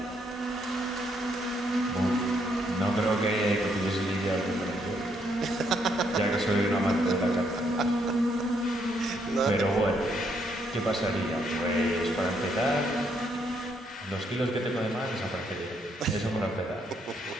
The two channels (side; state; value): both; normal; correlation 0.73